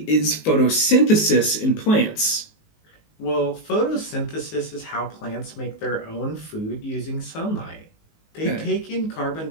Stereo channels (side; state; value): right; late; 19 ms